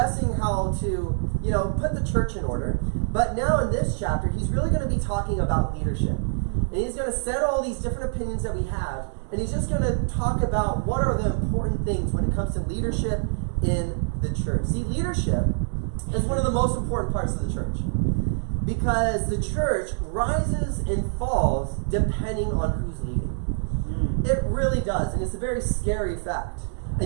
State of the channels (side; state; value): left; silent; digital silence